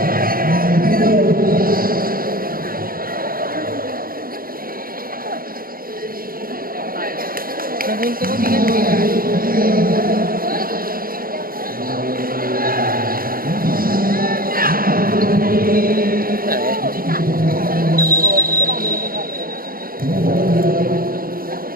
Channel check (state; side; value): late; left; 0.42 ms